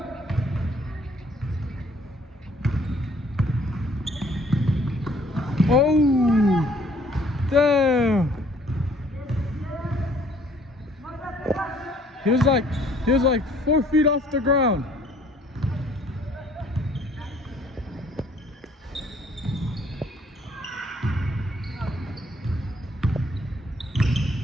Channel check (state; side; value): normal; both; correlation 0.60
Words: Oh. Damn. He was like 4 feet off the ground.